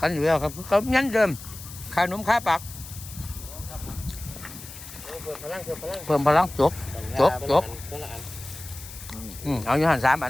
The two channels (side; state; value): left; noise; hiss, 14 dB below the sound